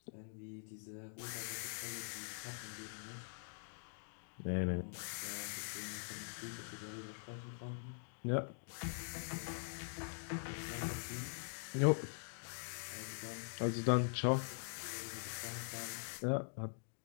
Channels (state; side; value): silent; right; digital silence